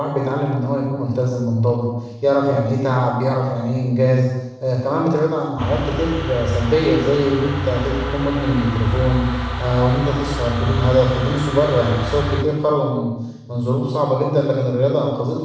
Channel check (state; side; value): identical; both; correlation 1.00